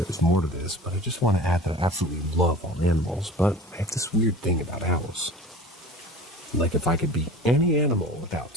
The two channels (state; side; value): normal; both; correlation 0.39